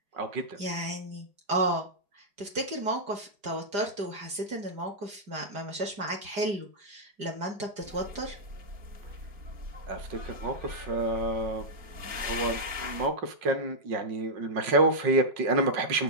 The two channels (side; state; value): left; late; 4.9 ms